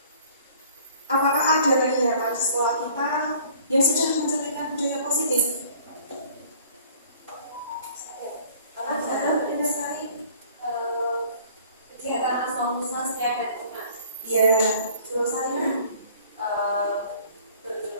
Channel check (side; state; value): both; inverted; correlation -0.53